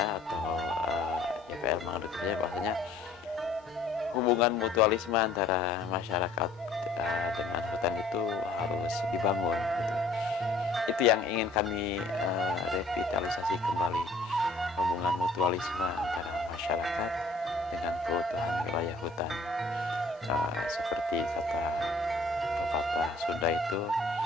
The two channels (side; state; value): right; quieter; 3.2 dB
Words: atau YPL menganut percaya bahwasanya hubungan mutualisme antara masyarakat dengan hutan itu harus dibangun gitu. Itu yang ingin kami revitalisasi kembali, hubungan mutualisme antara masyarakat dengan keutuhan wilayah hutan. Seperti kata pepatah Sunda itu